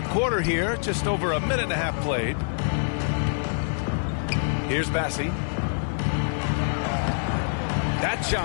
quarter here, just over a minute and a half played. Here's Bassi. That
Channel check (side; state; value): right; silent; digital silence